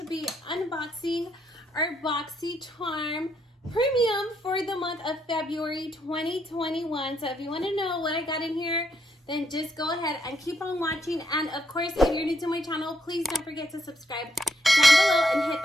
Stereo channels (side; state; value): both; normal; correlation 0.76